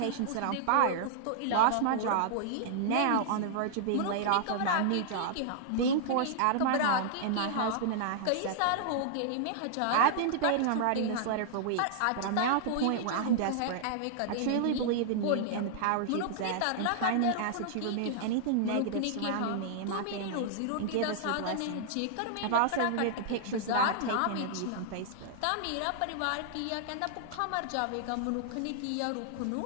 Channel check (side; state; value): both; different; correlation -0.01